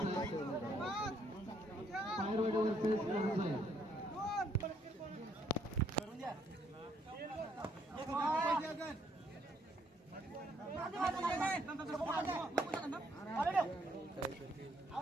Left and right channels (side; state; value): both; normal; correlation 0.70